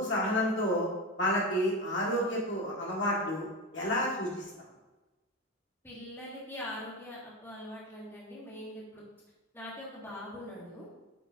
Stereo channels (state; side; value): normal; both; correlation 0.20